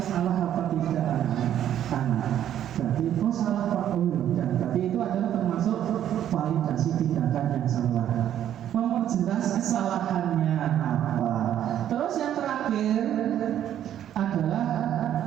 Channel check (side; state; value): left; quieter; 10.8 dB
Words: salah apa tidak, anak? Berarti oh salah Pak. Oh, ya. Berarti itu adalah termasuk validasi tindakan yang salah. Memperjelas kesalahannya apa. Terus yang terakhir adalah